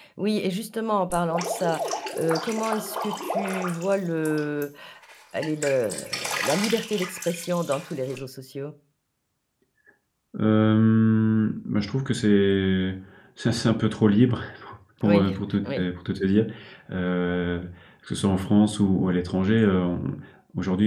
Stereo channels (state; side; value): identical; both; correlation 1.00